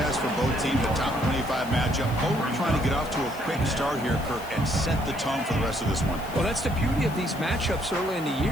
for both teams, a top 25 matchup. Both trying to get off to a quick start here, Kirk, and set the tone for the rest of this one. Well, that's the beauty of these matchups early in the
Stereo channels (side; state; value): left; noise; hiss, 18 dB below the sound